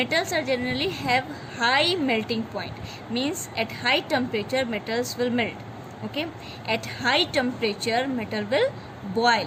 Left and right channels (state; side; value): identical; both; correlation 1.00